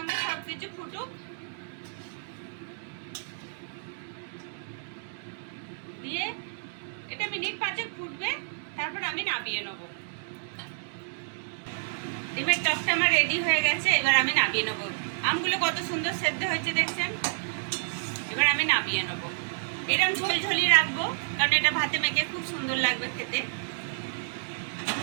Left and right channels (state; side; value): silent; left; digital silence